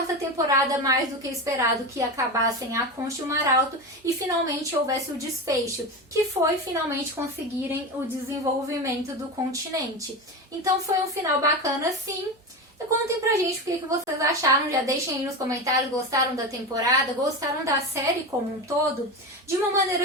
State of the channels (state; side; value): normal; both; correlation 0.22